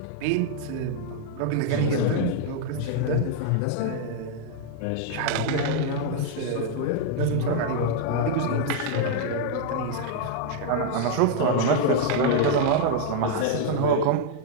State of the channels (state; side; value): different; both; correlation -0.01